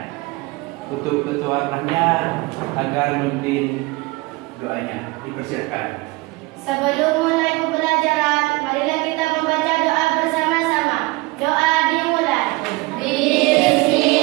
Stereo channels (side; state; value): left; quieter; 22.8 dB